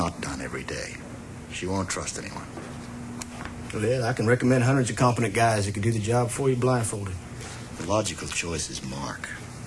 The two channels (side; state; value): both; identical; correlation 1.00